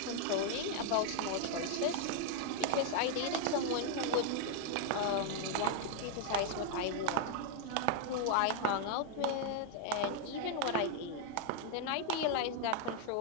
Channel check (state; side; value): different; both; correlation 0.00